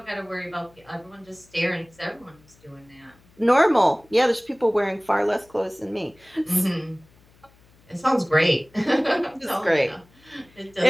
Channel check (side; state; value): left; noise; hum, 30 dB below the sound